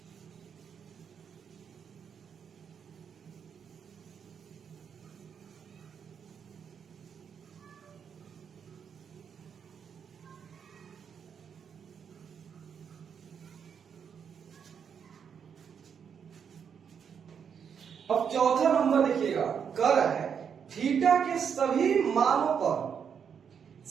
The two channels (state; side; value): quieter; left; 7.3 dB